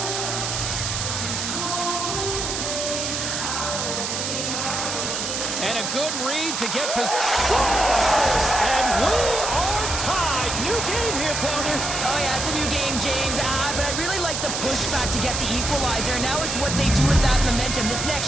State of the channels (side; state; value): right; noise; hiss, 2 dB below the sound